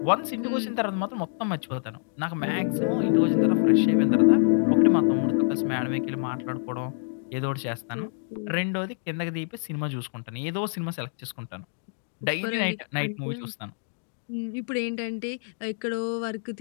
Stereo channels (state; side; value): silent; right; digital silence